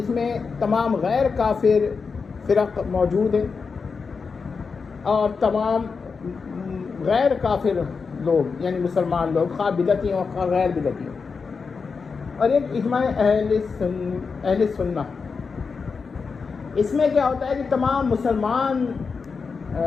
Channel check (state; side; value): quieter; right; 5.1 dB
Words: میں تمام غیر کافر فرق موجود ہیں اور تمام غیر کافر لوگ یعنی مسلمان لوگ خواہ بدعتی ہوں خواہ غیر بدعتی ہوں، اور ایک اجماع اہل سنہ۔ اس میں کیا ہوتا ہے کہ تمام مسلمان